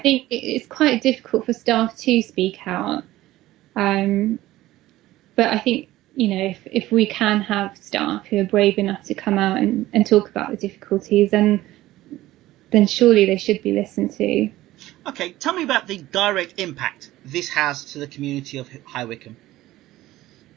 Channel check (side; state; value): left; quieter; 16.1 dB